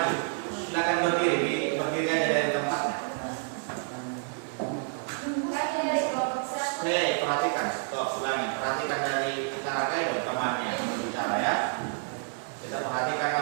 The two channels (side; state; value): left; silent; 59 dB below the other